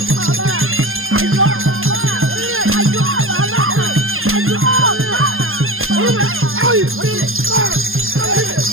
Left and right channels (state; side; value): late; left; 0.60 ms